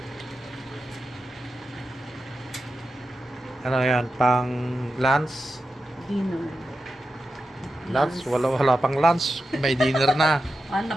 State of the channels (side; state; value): both; normal; correlation 0.90